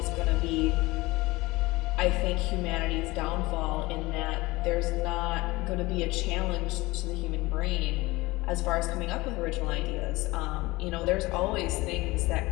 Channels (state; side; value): quieter; right; 21.2 dB